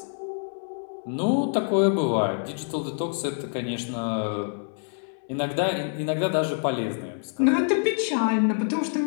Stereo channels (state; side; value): silent; right; 61 dB below the other